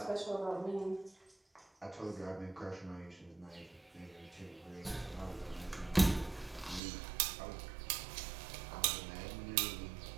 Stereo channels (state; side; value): drops out; left; at 6.8 s